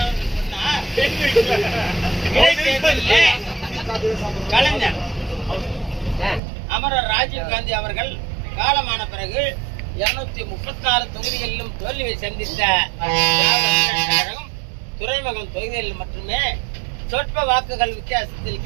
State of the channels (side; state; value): left; drops out; at 6.4 s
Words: அவர்கள் சொன்னார், இடைத்தேர்தலில் கலைஞர் அமரர் ராஜீவ் காந்தி அவர்கள் காலமான பிறகு 236 தொகுதிகளிலும் தோல்வியை சந்தித்த துறைமுகம் தொகுதிகளில் மட்டுமே சொற்ப வாக்குகள் வித்தியாசத்தில்